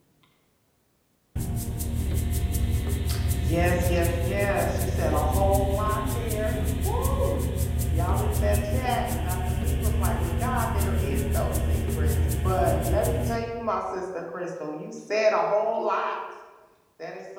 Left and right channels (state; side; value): identical; both; correlation 1.00